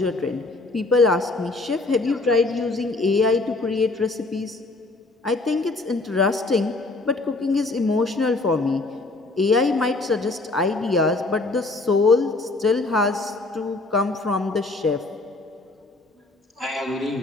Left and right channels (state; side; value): quieter; right; 3.2 dB